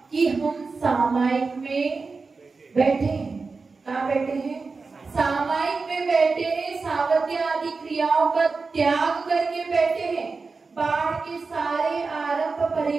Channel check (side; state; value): left; quieter; 4.3 dB